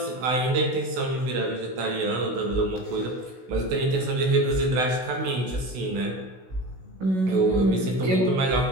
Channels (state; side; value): late; left; 16 ms